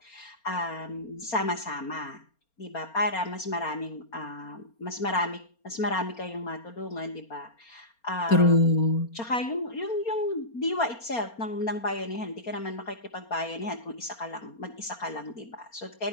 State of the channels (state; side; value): late; right; 4.3 ms